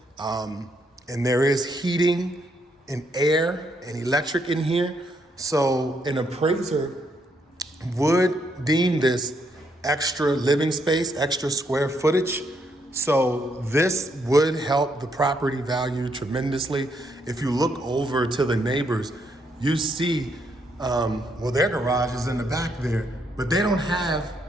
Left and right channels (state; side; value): normal; both; correlation 0.75